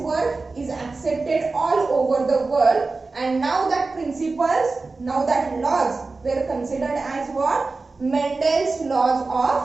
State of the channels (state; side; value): quieter; left; 3.8 dB